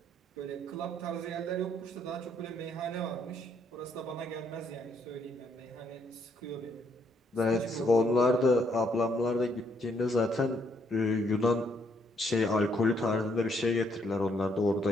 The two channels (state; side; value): normal; both; correlation 0.71